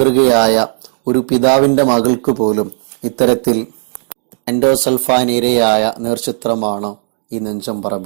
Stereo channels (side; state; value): left; silent; digital silence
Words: ഒരു പിതാവിന്റെ മകൾക്ക് പോലും ഇത്തരത്തിൽ എൻഡോസൾഫാൻ ഇരയായ നേർചിത്രമാണ് ഈ